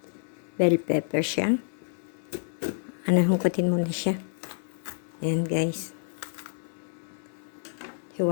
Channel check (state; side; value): silent; right; 59 dB below the other